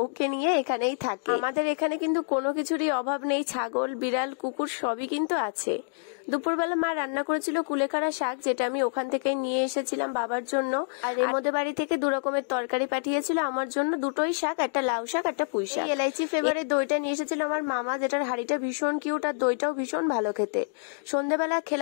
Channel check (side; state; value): right; silent; digital silence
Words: নিয়ে এখানেই থাকে। আমাদের এখানে কিন্তু কোনো কিছুরই অভাব নেই, ছাগল বিড়াল কুকুর সবই কিন্তু আছে। দুপুরবেলা মা রান্না করেছিল কুলেখাড়া শাক, যেটা আমি ওখান থেকে নিয়ে এসেছিলাম বাবার জন্য। আর এমদের বাড়ি থেকে 2 রকমের তরকারি পাঠিয়েছিল আমার জন্য, 2টোই শাক, একটা লাউ শাক একটা পুঁই শাক। এলাইচি ফ্লেভারের দইটা নিয়ে এসেছিল আমার মামা, যেটার হাড়িটা ভীষণ কিউট আর দইটাও ভীষণ ভালো খেতে। সন্ধ্যাবেলা